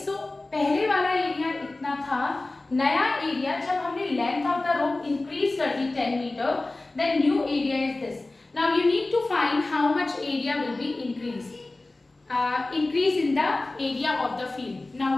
so पहले वाला area इतना था. नया area जब हमने length of the rope increase कर दी 10 metre, then new area is this. Now you need to find how much area will be increased. Increase in the area of the field. Now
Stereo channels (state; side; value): quieter; right; 3.0 dB